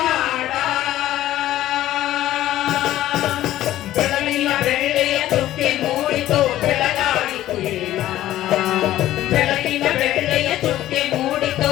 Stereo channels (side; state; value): right; quieter; 13.9 dB